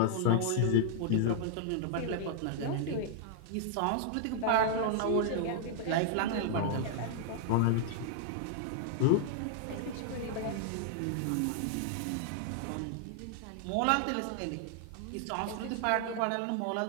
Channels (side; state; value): both; different; correlation -0.01